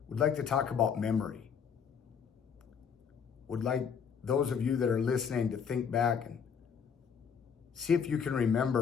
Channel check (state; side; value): quieter; right; 6.9 dB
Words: we'd like to talk about memory. Would like those of you that are listening to think back and see if you can